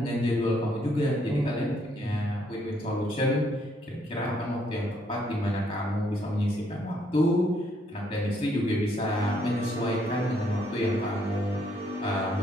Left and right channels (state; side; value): normal; both; correlation 0.70